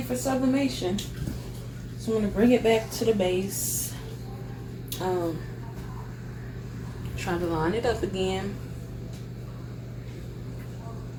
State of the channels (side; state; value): both; identical; correlation 1.00